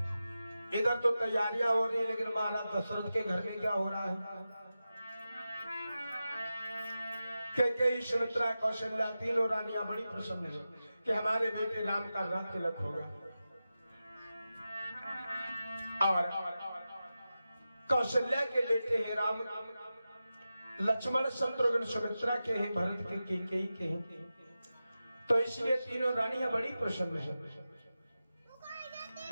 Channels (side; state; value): both; inverted; correlation -0.92